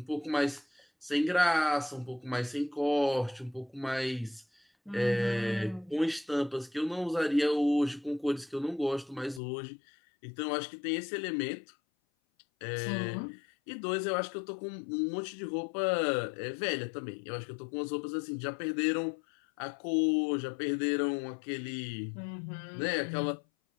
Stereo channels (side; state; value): right; drops out; at 9.4 s